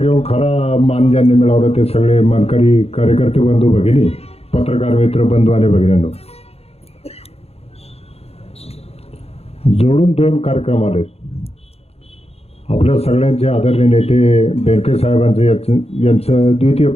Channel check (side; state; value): right; late; 0.29 ms